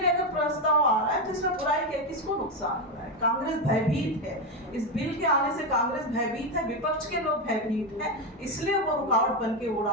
अगर प्रस्ताव आ रहा है तो इसमें बुराई क्या, किसको नुकसान हो रहा है? कांग्रेस भयभीत है, इस बिल के आने से कांग्रेस भयभीत है, विपक्ष के लोग भयभीत है, इसलिए वो रुकावट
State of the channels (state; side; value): normal; both; correlation 0.10